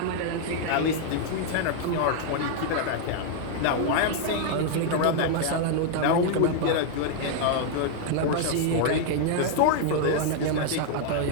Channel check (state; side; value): different; both; correlation 0.00